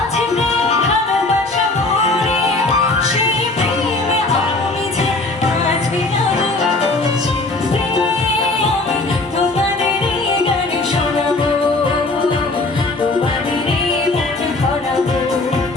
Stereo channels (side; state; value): right; quieter; 3.1 dB